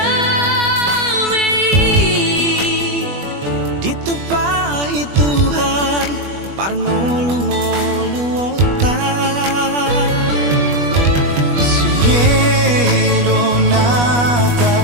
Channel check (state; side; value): late; left; 21 ms